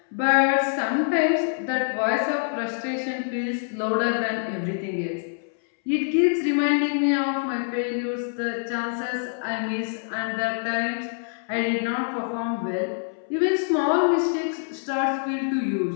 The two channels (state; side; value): silent; right; 62 dB below the other